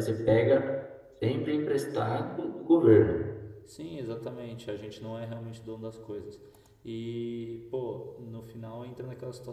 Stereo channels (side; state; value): both; identical; correlation 1.00